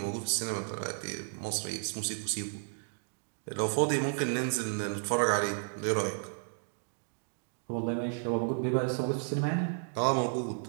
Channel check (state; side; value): silent; left; digital silence